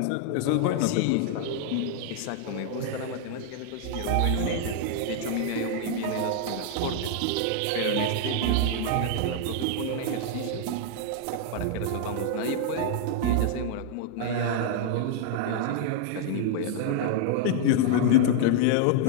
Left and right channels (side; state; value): both; different; correlation -0.01